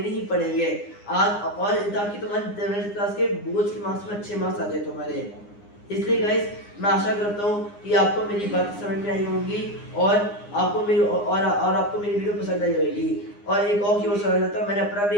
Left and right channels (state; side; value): late; right; 9.8 ms